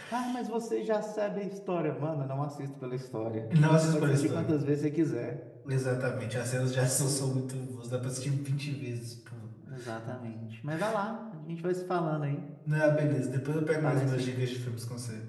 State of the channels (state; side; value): identical; both; correlation 1.00